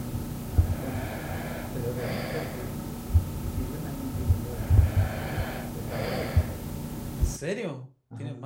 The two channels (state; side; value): identical; both; correlation 1.00